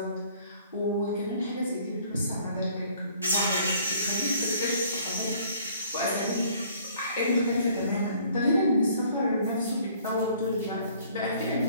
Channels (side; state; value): both; inverted; correlation -0.57